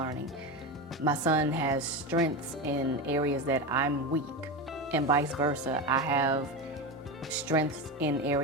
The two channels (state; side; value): normal; both; correlation 0.19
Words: My son has strengths in areas that I'm weak, and vice versa. I have strengths in